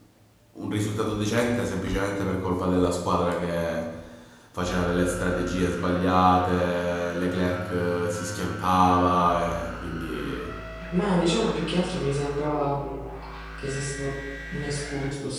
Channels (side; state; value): both; identical; correlation 1.00